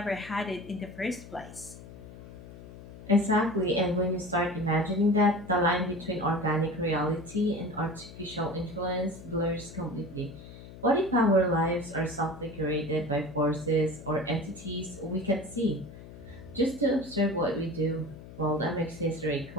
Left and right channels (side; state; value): left; noise; hum, 16 dB below the sound